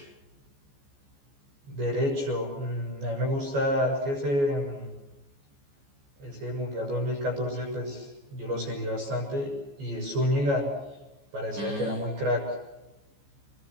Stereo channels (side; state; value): left; late; 14 ms